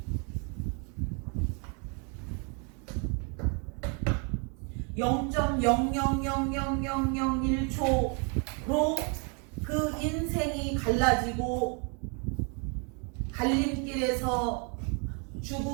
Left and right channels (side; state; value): left; quieter; 36.5 dB